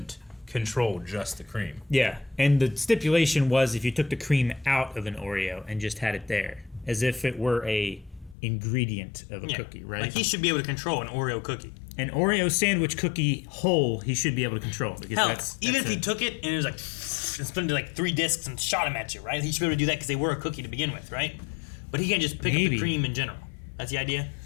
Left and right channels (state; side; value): drops out; right; at 8.3 s